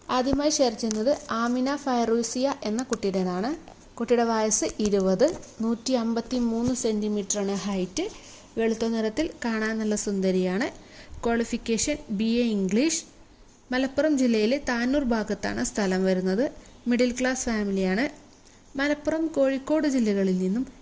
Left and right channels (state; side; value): identical; both; correlation 1.00